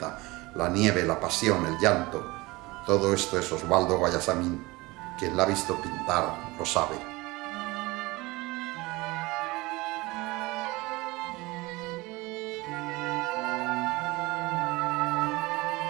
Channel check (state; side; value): quieter; left; 22.1 dB